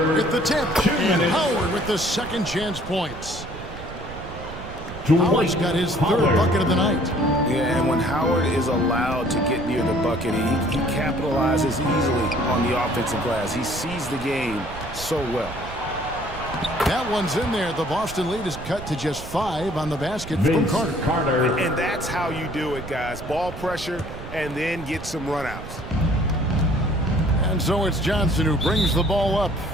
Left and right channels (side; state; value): right; noise; rumble, 12 dB below the sound